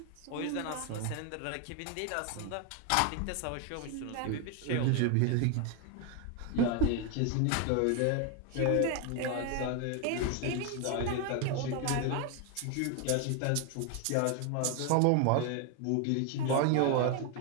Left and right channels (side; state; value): both; different; correlation 0.01